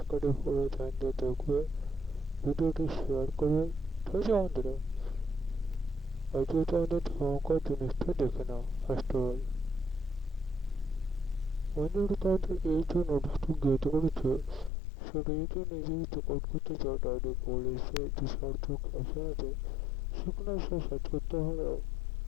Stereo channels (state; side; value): drops out; right; at 14.7 s